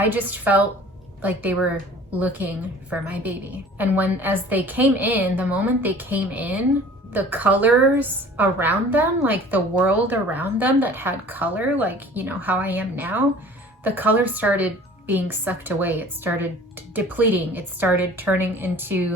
just felt like they were looking for my baby. And as they came in, the moment they came in, the colors around them, like the world around them that had color, like, you know, how I am now, the color started being sucked away. It started depleting. It started turning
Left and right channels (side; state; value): both; normal; correlation 0.47